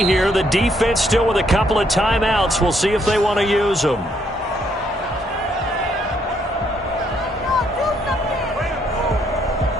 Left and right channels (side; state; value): both; normal; correlation 0.71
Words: here. The defense still with a couple of timeouts. We'll see if they want to use them.